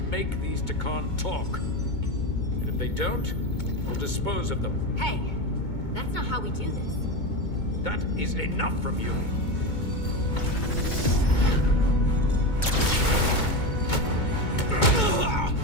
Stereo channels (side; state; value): right; late; 2.2 ms